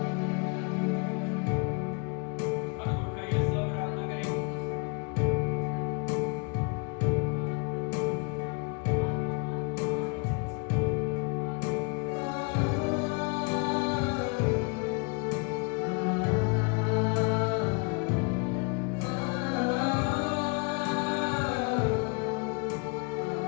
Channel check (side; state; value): right; quieter; 32.9 dB